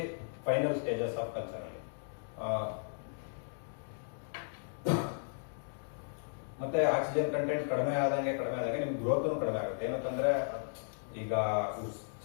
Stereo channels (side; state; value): right; silent; digital silence